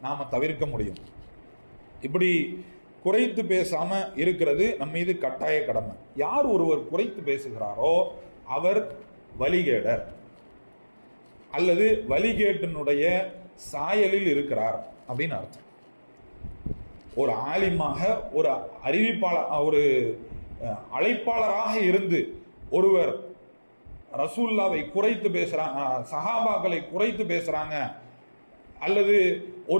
நாம் தவிர்க்க முடியும். இப்படி குறைத்து பேசாமல் இருக்கிறது நம் மீது கட்டாய கடமை. யார் ஒருவர் குறைத்து பேசுகிறாரோ அவர் வழிகேடர் அல்லது வழிகேட்டினுடைய சாயலில் இருக்கிறார் அப்படின்னு அர்த்தம். ஒரு ஆலிமாக, ஒரு அறிவிப்பாளர், ஒரு அழைப்பாளராக இருந்து ஒருவர் ரசூல்லாவை குறைத்து பேசுறாங்க, சஹாபாக்களை குறைத்து பேசுறாங்க, அல்லது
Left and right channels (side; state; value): both; inverted; correlation -1.00